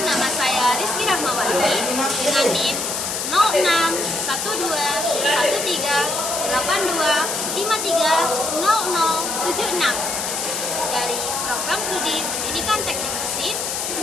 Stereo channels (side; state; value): left; noise; hiss, 2 dB below the sound